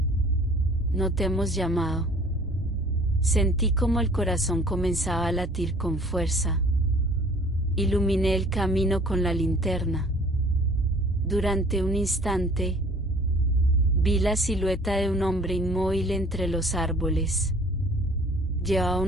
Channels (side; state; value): both; normal; correlation 0.52